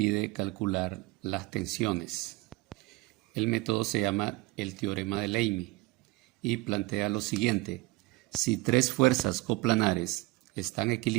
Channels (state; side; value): quieter; left; 21.7 dB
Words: calcular las tensiones. El método se llama el teorema de Leibniz y plantea lo siguiente: si tres fuerzas coplanares están